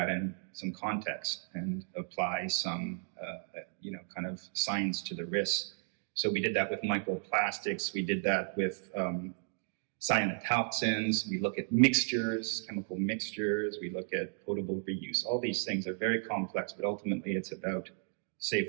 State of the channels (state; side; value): silent; left; 55 dB below the other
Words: in some context and apply some kind of science to the risks. So we did that with microplastics. We did that with cyanotoxins. We look at mixtures, chemical mixtures. We look at potable reuse. All these things are very complex, but ultimately it's about safe